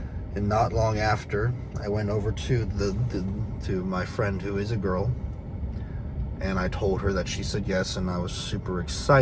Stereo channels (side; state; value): both; identical; correlation 1.00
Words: And not long after, I went over to to my friend who is a girl, and I told her that she said yes, and I was super